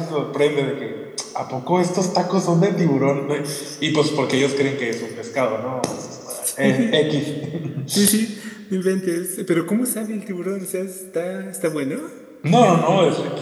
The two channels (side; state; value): both; identical; correlation 1.00